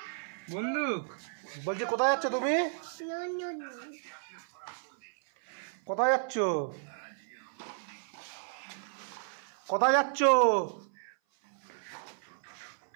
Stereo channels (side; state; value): left; silent; 56 dB below the other